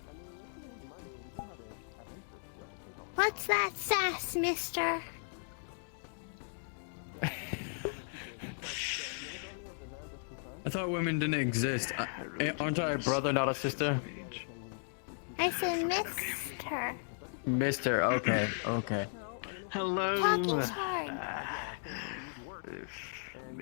What's that sass, mister? I thought women didn't exist. Aren't I a brother, not a sister? I said mister. Mister, okay, okay. Hello. Talking's hard.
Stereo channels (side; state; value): right; silent; digital silence